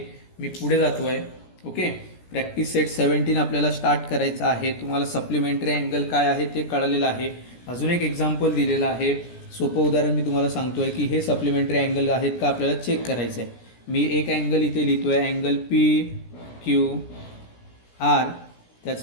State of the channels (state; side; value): late; right; 17 ms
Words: मी पुढे जातोय. ओके, प्रॅक्टिस सेट 17 आपल्याला स्टार्ट करायचं आहे. तुम्हाला सप्लिमेंटरी अँगल काय आहे ते कळलेलं आहे. अजून एक एक्झाम्पल दिलेलं आहे, सोपं उदाहरण मी तुम्हाला सांगतोय की हे सप्लिमेंटरी अँगल आहेत का आपल्याला चेक करायचं आहे. मी एक अँगल इथे लिहितोय, अँगल PQR,